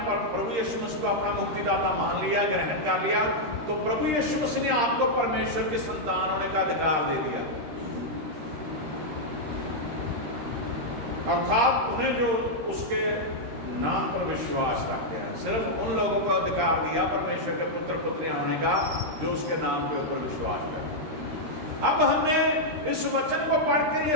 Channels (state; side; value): late; left; 13 ms